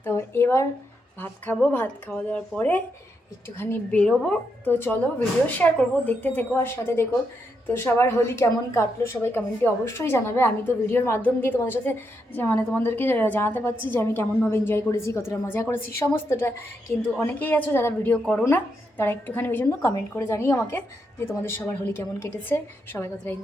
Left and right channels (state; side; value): normal; both; correlation 0.81